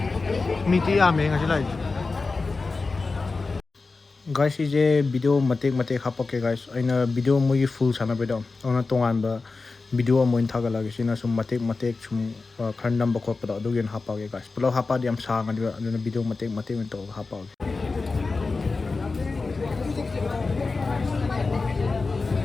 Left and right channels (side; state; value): right; quieter; 4.0 dB